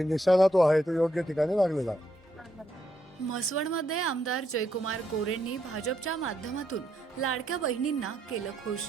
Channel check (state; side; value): normal; both; correlation 0.77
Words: निशाणा तो आहे तो योग्य ठिकाणी लागलेला आहे. म्हसवडमध्ये आमदार जयकुमार गोरेंनी भाजपच्या माध्यमातून लाडक्या बहिणींना केलं खुश.